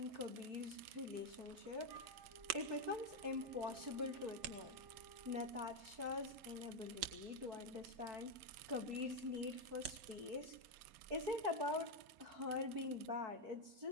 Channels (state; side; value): late; left; 4.5 ms